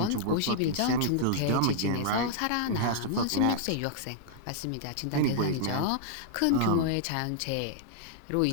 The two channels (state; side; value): different; both; correlation -0.01